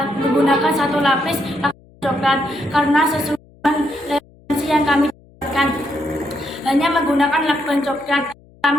menggunakan satu lapis lakban coklat karena sesuai dengan referensi yang kami dapatkan. Hanya menggunakan lakban coklat.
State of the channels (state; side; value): noise; left; hum, 27 dB below the sound